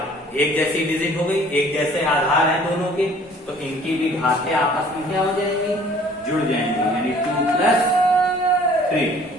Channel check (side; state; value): both; normal; correlation 0.53